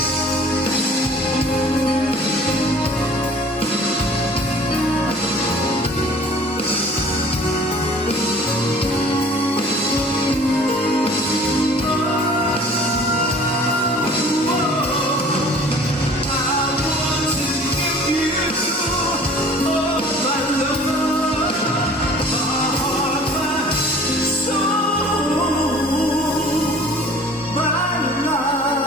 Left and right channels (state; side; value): normal; both; correlation 0.48